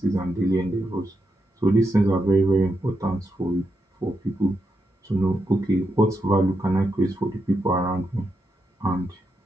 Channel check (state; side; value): normal; both; correlation 0.84